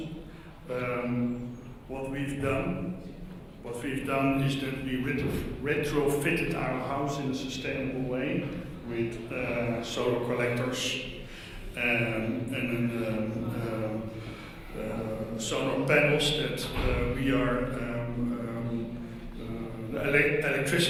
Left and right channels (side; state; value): both; identical; correlation 1.00